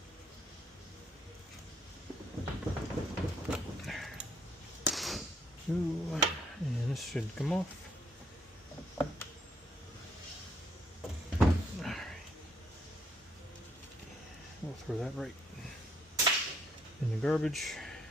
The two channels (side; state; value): both; normal; correlation 0.69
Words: Ooh, and this should come off. We'll throw that right in the garbage,